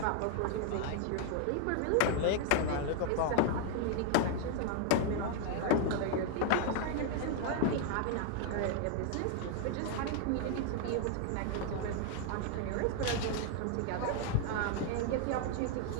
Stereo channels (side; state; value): both; different; correlation 0.00